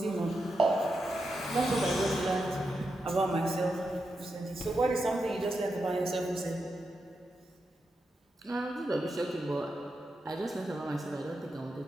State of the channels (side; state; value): both; normal; correlation 0.87